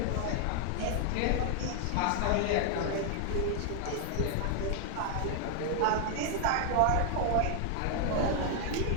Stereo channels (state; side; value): different; both; correlation 0.00